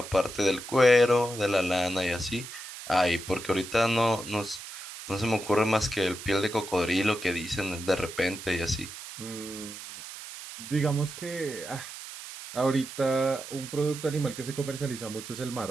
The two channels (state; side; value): noise; right; hiss, 12 dB below the sound